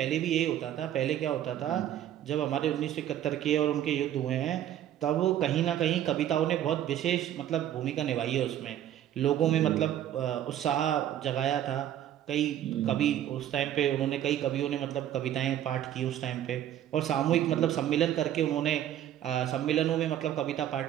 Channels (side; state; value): left; quieter; 11.3 dB